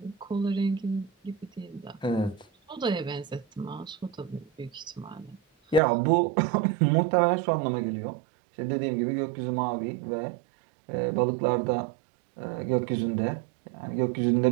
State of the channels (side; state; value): left; drops out; at 5.8 s